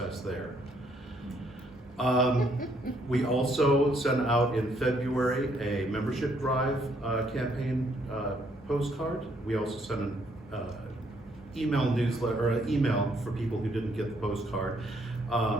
there. We also sent out in February a membership drive campaign postcard. We also sent an email newsletter, or an email for people who didn't get the postcard.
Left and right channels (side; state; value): both; normal; correlation 0.70